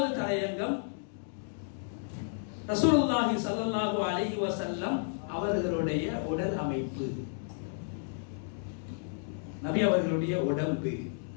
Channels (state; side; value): silent; right; digital silence